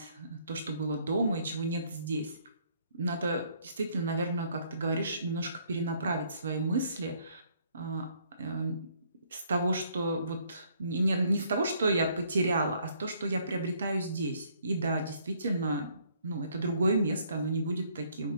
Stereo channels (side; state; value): both; inverted; correlation -0.65